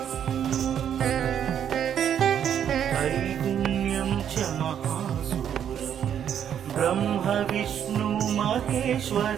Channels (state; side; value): quieter; left; 9.2 dB